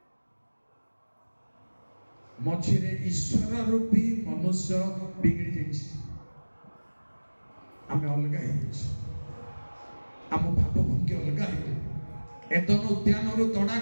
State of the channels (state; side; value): inverted; both; correlation -1.00